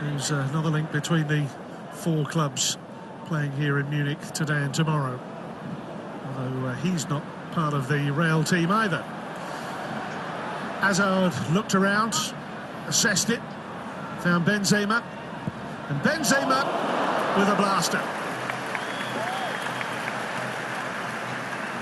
another link between the four clubs playing here in Munich today and tomorrow. Although he's not part of the Real team either. Hazard looked around, assessed it, found Benzema, and Benzema with a blaster.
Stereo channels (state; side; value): identical; both; correlation 1.00